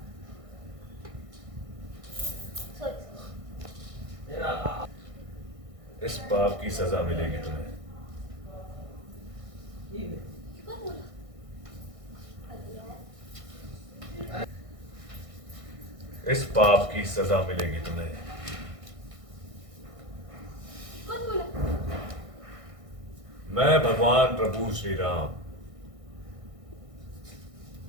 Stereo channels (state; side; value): late; left; 1.6 ms